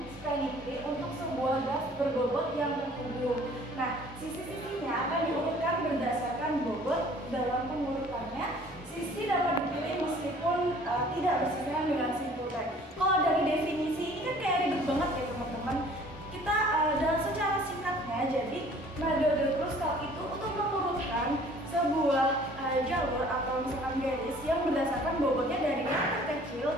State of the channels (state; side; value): normal; both; correlation 0.53